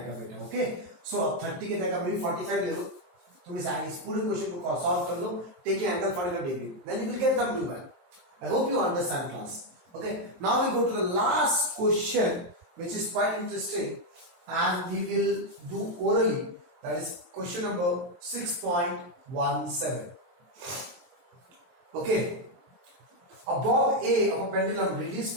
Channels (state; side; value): late; left; 23 ms